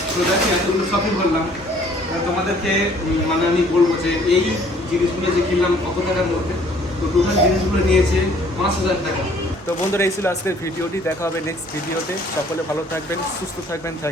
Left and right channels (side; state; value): both; normal; correlation 0.58